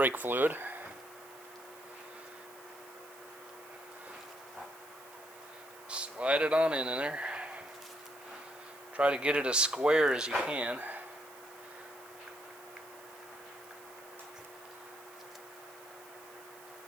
fluid. Slide it on in there. Try to get it as square as you can.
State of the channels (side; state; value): right; noise; hiss, 21 dB below the sound